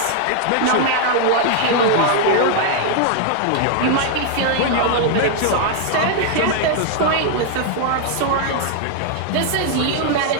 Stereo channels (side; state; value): both; different; correlation 0.00